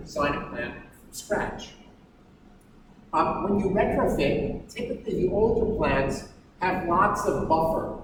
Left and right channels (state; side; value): identical; both; correlation 1.00